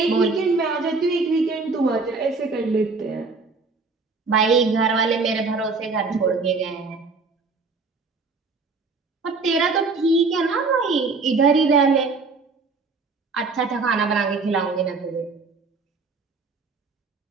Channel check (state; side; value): quieter; left; 4.2 dB